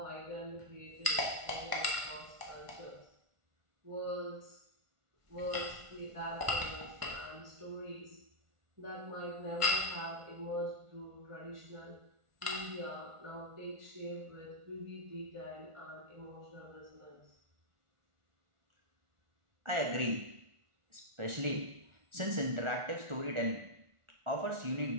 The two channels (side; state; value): left; late; 1.5 ms